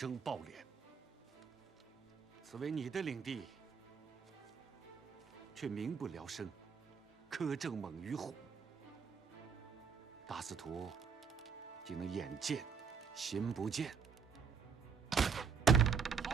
暴敛。此为你的领地，却民不聊生，苛政猛于虎。大司徒竟能眼见心不见。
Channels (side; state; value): left; quieter; 6.3 dB